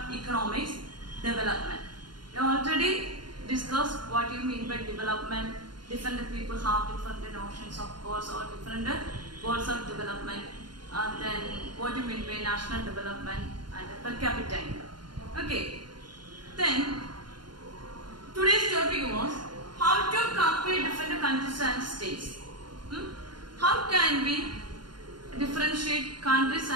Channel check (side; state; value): left; late; 0.71 ms